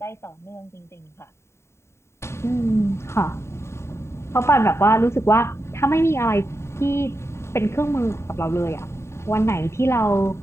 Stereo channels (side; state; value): right; late; 0.13 ms